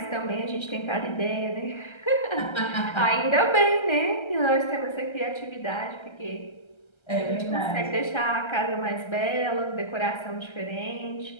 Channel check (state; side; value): late; right; 1.3 ms